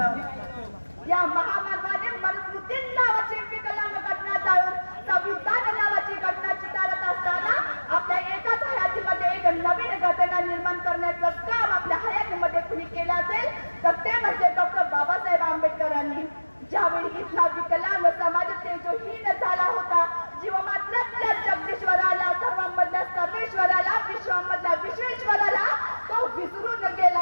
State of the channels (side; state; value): both; inverted; correlation -1.00